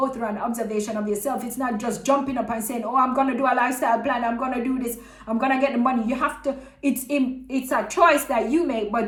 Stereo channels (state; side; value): identical; both; correlation 1.00